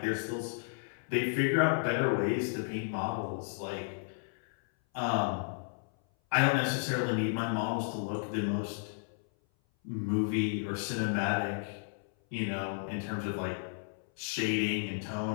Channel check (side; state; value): right; silent; 56 dB below the other